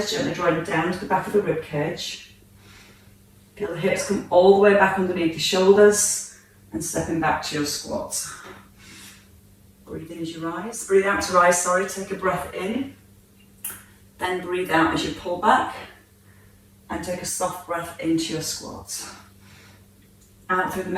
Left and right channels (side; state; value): both; identical; correlation 1.00